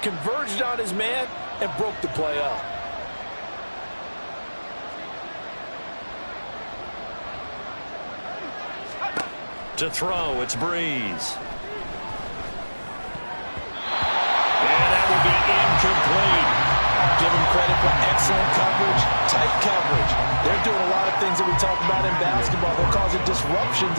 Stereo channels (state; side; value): inverted; both; correlation -1.00